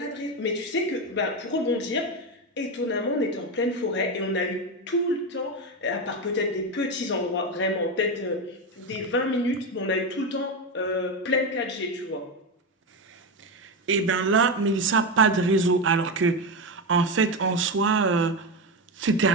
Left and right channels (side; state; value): both; normal; correlation 0.13